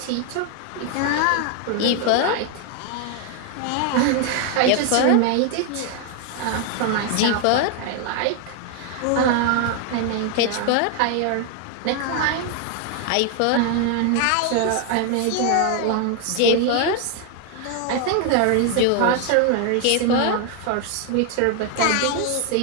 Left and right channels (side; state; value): both; different; correlation 0.00